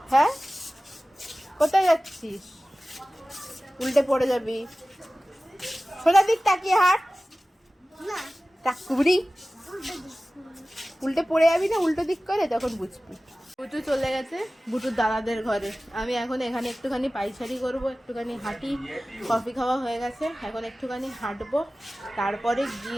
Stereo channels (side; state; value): both; normal; correlation 0.97